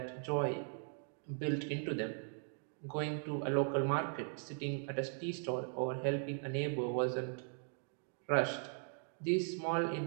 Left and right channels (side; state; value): left; silent; 52 dB below the other